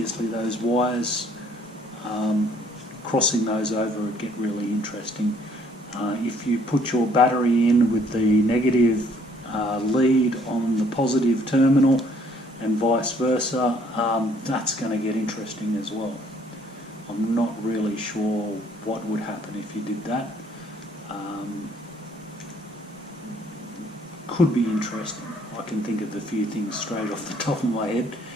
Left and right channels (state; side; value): normal; both; correlation 0.62